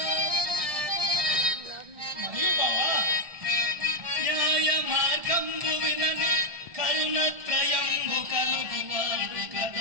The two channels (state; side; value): late; left; 1.4 ms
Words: మరియు బావా న్యాయ మార్గంబు వినని కరుణత్రయంబు కలుగువాడు